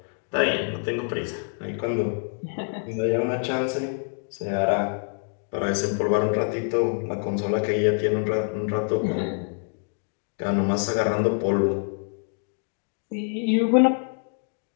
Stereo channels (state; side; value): silent; right; 61 dB below the other